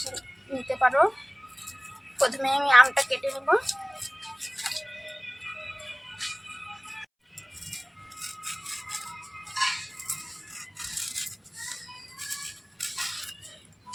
নিতে পারো। প্রথমে আমি আমটা কেটে নেব।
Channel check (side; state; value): both; identical; correlation 1.00